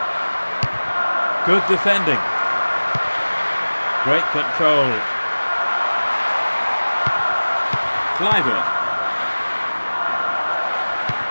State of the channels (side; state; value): both; inverted; correlation -1.00